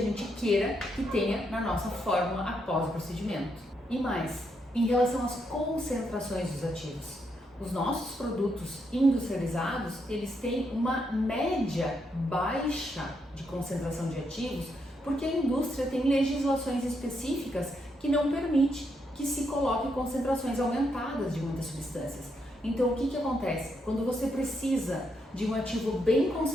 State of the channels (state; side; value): normal; both; correlation 0.79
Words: queira que tenha na nossa fórmula após o procedimento. E mais, em relação às concentrações dos ativos. Os nossos produtos industrializados, eles têm uma média baixa de concentração de ativos, porque a indústria tem legislações específicas que não permite que se coloque concentrações aumentadas de muitas substâncias. Então o que acontece? Quando você precisa de um ativo bem